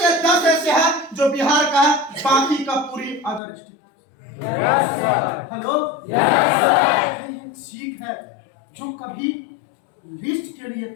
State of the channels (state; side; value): drops out; right; at 3.4 s